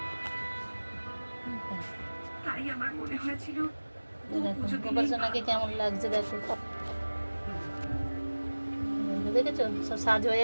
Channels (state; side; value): inverted; both; correlation -1.00